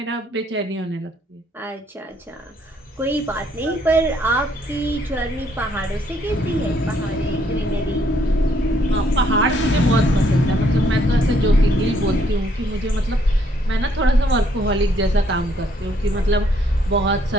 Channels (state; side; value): normal; both; correlation 0.69